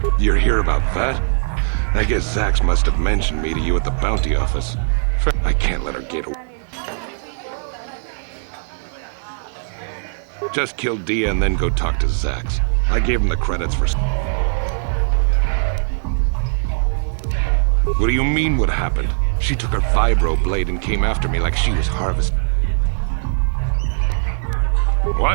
You're here about that? I guess Zax must have mentioned me to you at the bounty office. I can't let her get away. Just kill Dia and then go talk to Zax. I gave him the credits for... What do you mean what happened? She took her vibro blade and came after me like she was Harvest.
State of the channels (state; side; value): silent; left; 55 dB below the other